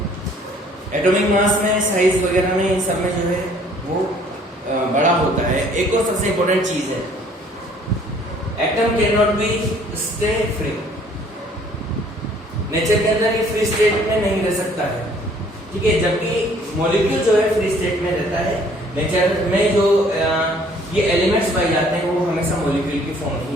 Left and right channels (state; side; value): normal; both; correlation 0.58